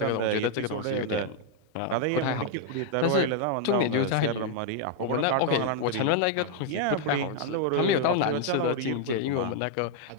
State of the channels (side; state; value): both; different; correlation 0.00